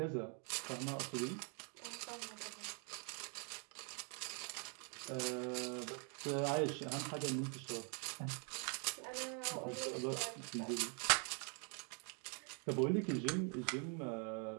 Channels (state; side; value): quieter; left; 39.3 dB